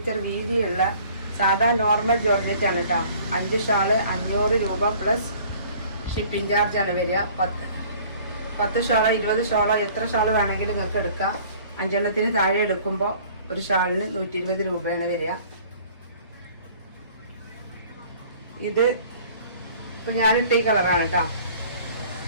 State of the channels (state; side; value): inverted; both; correlation -0.52